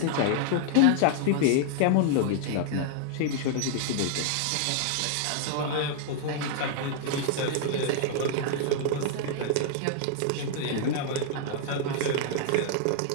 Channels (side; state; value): both; different; correlation -0.01